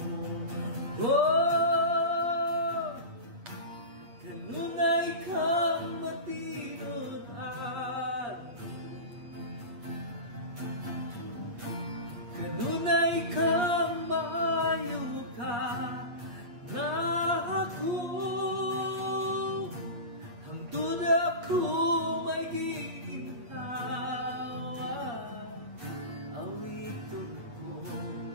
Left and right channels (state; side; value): late; left; 8.4 ms